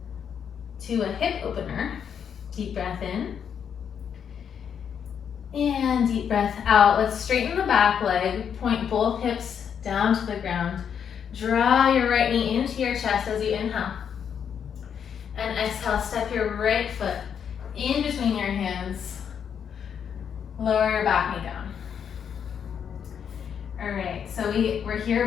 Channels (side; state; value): right; quieter; 7.8 dB